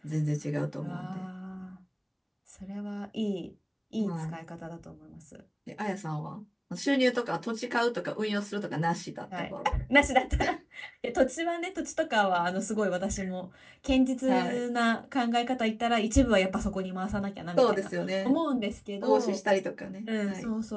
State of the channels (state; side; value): identical; both; correlation 1.00